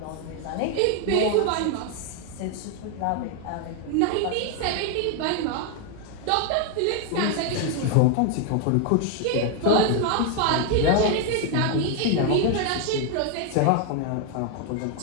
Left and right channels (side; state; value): both; different; correlation 0.01